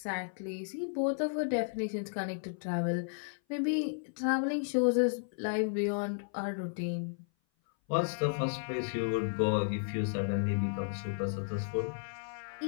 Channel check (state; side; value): silent; right; 55 dB below the other